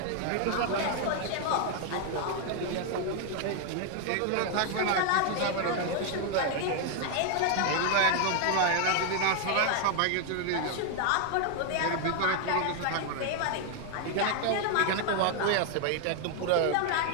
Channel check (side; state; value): both; different; correlation 0.00